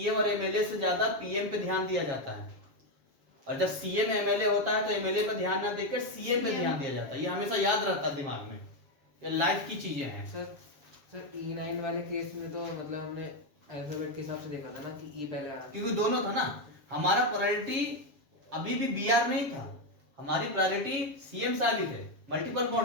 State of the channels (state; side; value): late; left; 7.3 ms